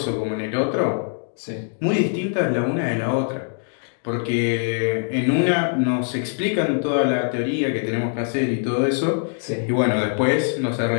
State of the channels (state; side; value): silent; right; 61 dB below the other